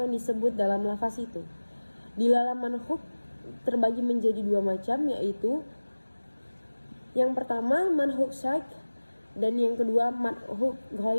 yang disebut dalam lafaz itu. Dilalah manhuk terbagi menjadi dua macam, yaitu yang pertama manhuk syaik dan yang kedua manhuk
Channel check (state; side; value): inverted; both; correlation -1.00